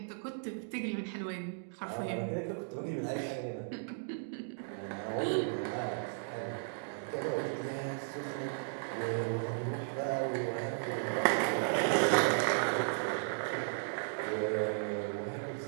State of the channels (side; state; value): left; silent; digital silence